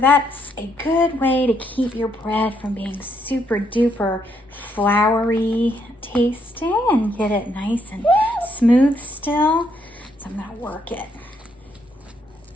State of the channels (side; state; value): both; normal; correlation 0.74